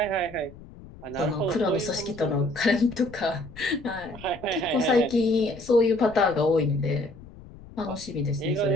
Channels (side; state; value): left; noise; rumble, 18 dB below the sound